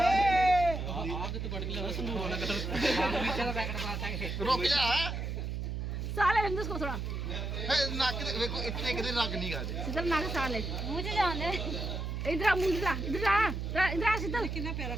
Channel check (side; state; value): right; noise; hum, 3 dB below the sound